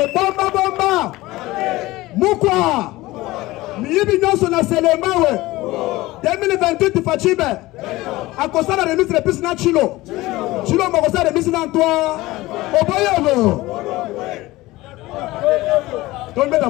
bomba. Mukwa. Miyibi nyonso na selema we. 2028 Fachibe a cause la remise de plus na Chilo Mokosa remise dans toi Oboyobo Tombe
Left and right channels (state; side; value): quieter; right; 19.0 dB